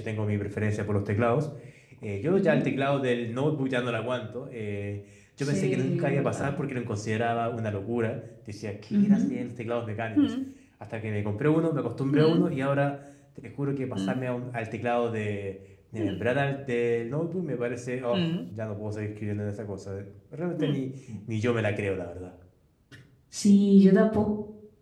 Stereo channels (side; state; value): both; identical; correlation 1.00